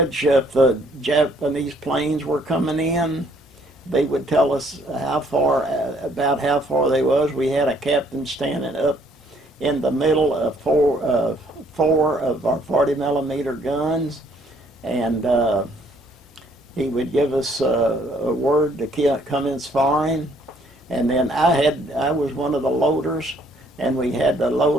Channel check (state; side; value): normal; both; correlation 0.64